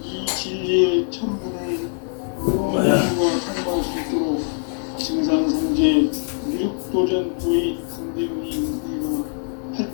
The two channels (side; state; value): right; silent; 64 dB below the other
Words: 이 진리의 첫 문을 모두가 통과할 수 있도록 증산성제 미륵도전 도인 강대문이 내가